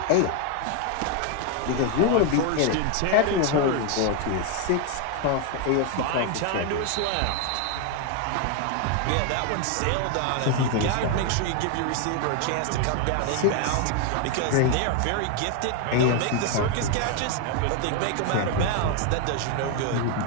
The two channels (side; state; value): both; different; correlation 0.01